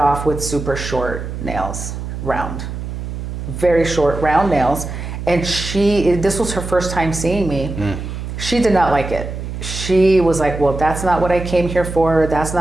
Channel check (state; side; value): noise; right; hum, 7 dB below the sound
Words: with super short nails, round, very short round nails. And this was her first time seeing me. She did not like it. She was like, well, that's not what I came here for. That's